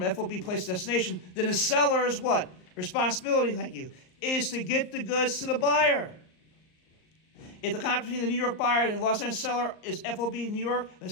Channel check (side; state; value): right; late; 38 ms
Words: FOB place of destination, then the seller's what? Responsibility, thank you, is to get the goods to the buyer. If the contract between the New York buyer and the Los Angeles seller is FOB New York, the